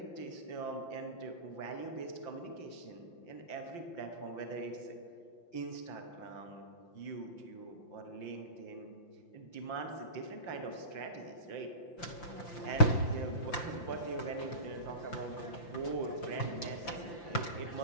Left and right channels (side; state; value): right; late; 5.8 ms